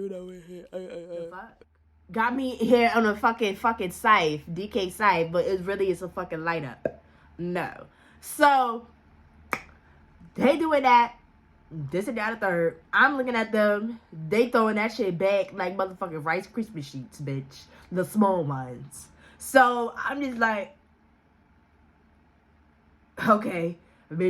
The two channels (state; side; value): identical; both; correlation 1.00